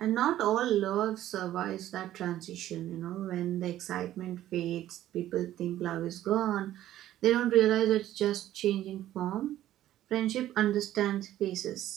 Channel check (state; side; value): quieter; left; 13.2 dB